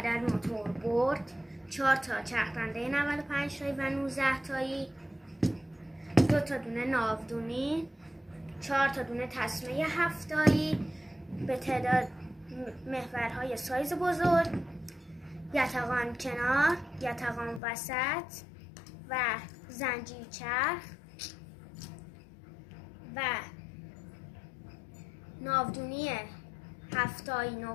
موتور برد، 4 تا چرخنده 95 تایی و 19 تایی، 2 تا دونه ناودونی، 4 تا دونه تسمه 7 تایی به تعداد محورهای سایز بزرگ، یتقان کنار، یتقان وسط و زنجیر چرخ و ناودونی 7 تایی، 9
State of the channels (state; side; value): drops out; right; at 17.6 s